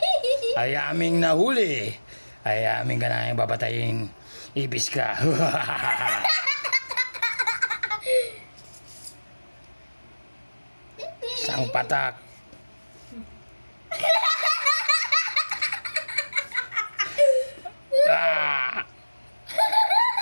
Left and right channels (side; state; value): both; inverted; correlation -1.00